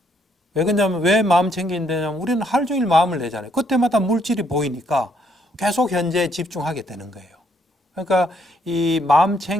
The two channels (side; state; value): both; normal; correlation 0.70